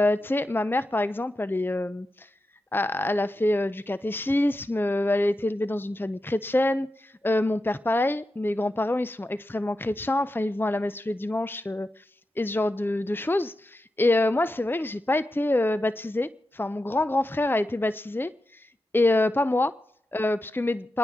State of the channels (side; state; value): both; normal; correlation 0.90